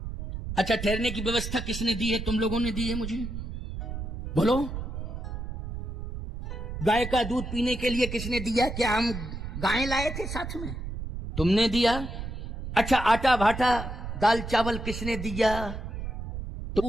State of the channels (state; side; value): noise; right; rumble, 7 dB below the sound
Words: अच्छा ठहरने की व्यवस्था किसने दी है? तुम लोगों ने दी है मुझे, बोलो। गाय का दूध पीने के लिए किसने दिया? क्या हम गाय लाए थे साथ में? तुमने दिया। अच्छा आटा भाटा दाल चावल किसने दिया?